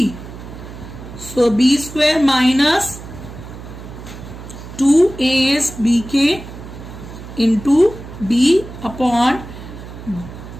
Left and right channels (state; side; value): noise; right; hum, 13 dB below the sound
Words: So B square minus 2A is BK into B upon